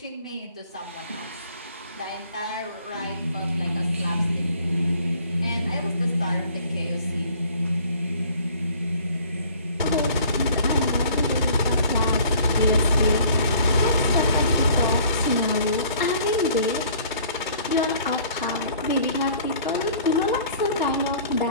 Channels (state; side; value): inverted; both; correlation -0.53